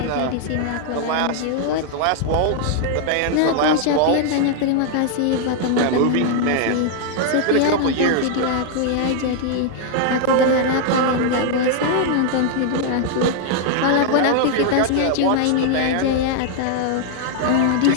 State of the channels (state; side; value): different; both; correlation 0.00